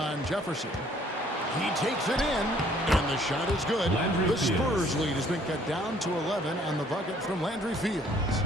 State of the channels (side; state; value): both; normal; correlation 0.60